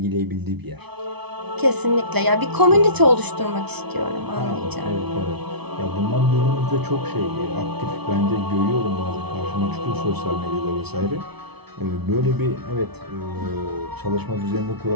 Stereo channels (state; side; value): late; left; 0.99 ms